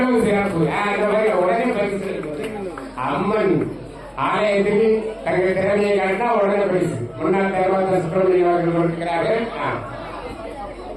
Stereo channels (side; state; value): both; identical; correlation 1.00